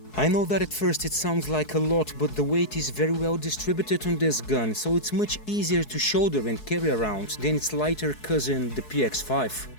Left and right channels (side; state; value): right; late; 4.7 ms